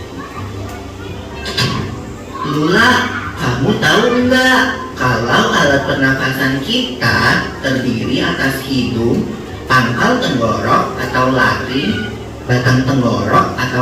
Lula, kamu tahu enggak kalau alat pernafasan kita terdiri atas hidung, pangkal tenggorok atau laring, batang tenggorok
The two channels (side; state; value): both; identical; correlation 1.00